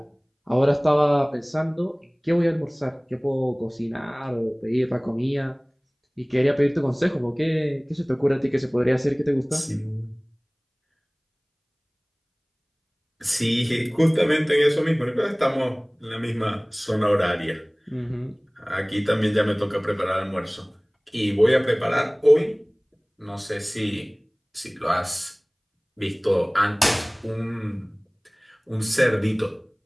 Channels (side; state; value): both; identical; correlation 1.00